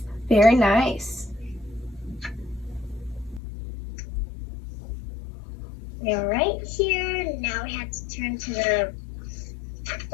Very nice. We're right here. Now we have to turn to the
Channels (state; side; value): drops out; right; at 3.4 s